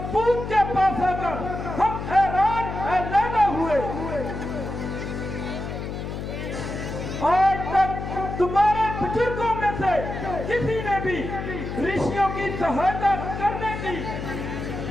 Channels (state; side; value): noise; left; hum, 6 dB below the sound